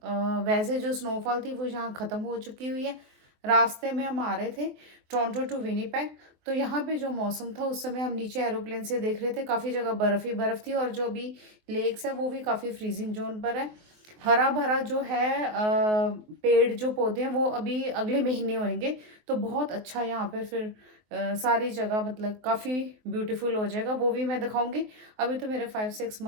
वैसे जो स्नोफॉल थी वो यहाँ ख़त्म हो चुकी हुई है। रास्ते में हम आ रहे थे टोरंटो टू विनीपेग, तो यहाँ पे जो मौसम था उस समय हम नीचे एरोप्लेन से देख रहे थे, काफ़ी जगह बर्फ़ ही बर्फ़ थी, और जो अभी लेक्स है वो भी काफ़ी फ्रीजिंग जोन पर है। हरा भरा जो है पेड़ जो पौधे हैं वो अभी अगले महीने होंगे, तो बहुत अच्छा यहाँ पे फिर सारी जगह मतलब काफ़ी ब्यूटीफुल हो जाएगा, वो भी मैं दिखाऊंगी। अभी तो मेरे 5-6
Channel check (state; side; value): late; left; 24 ms